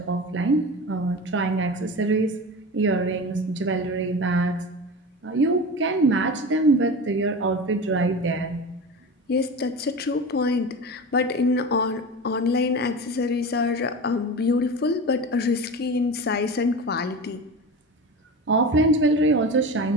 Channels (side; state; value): both; normal; correlation 0.29